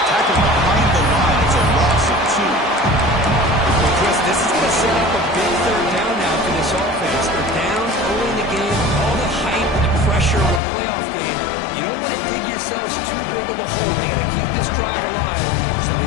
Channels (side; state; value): right; drops out; at 10.6 s